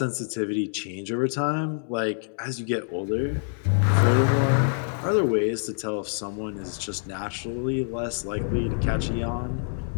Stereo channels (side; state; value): right; silent; digital silence